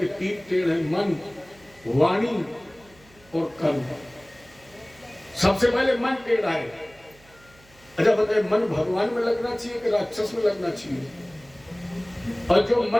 3 टेढ़ है, मन, वाणी और कर्म। सबसे पहले मन टेढ़ा है। अच्छा बताइए, मन भगवान में लगना चाहिए कि राक्षस में लगना चाहिए? और जो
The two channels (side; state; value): right; noise; hum, 27 dB below the sound